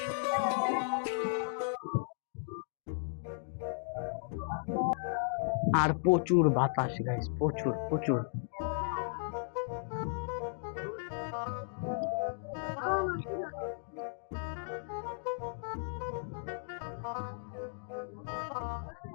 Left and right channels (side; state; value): right; silent; digital silence